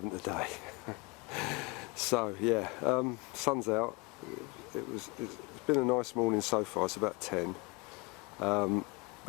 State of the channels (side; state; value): right; quieter; 27.5 dB